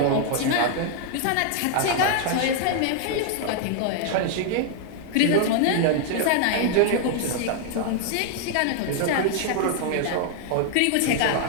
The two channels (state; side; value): different; both; correlation 0.00